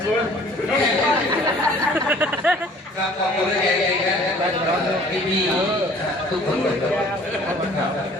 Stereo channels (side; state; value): both; normal; correlation 0.52